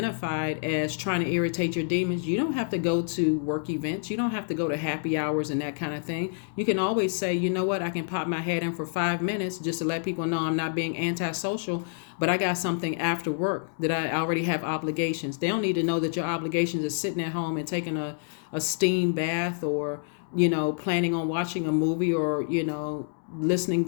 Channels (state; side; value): silent; right; digital silence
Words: as trying to irritate your demons, you don't have to go to work events. You don't have to go to happy hours and that kind of thing. You can always say, you know what, I can pop my head in for 5 minutes just to let people know I'm not being antisocial, but I got something after work that I already have obligations. They don't need to know that your obligations is sitting at home and taking a steam bath, or, planning on watching a movie, or, listening